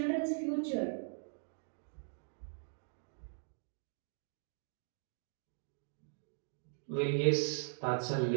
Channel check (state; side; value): silent; left; digital silence